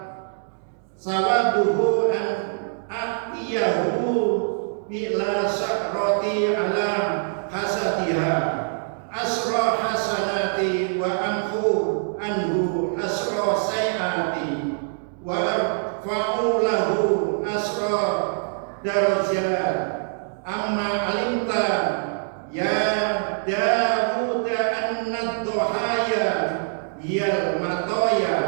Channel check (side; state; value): left; silent; digital silence